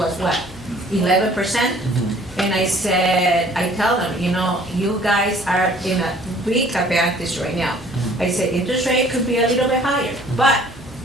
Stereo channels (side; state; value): both; normal; correlation 0.55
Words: what, 11%? And I said, I tell them, you guys are in a big advantage right now. I said, interest rate could be a little bit higher, but